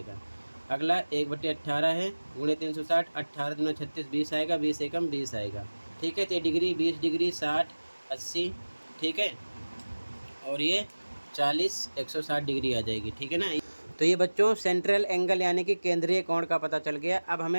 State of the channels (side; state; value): both; inverted; correlation -1.00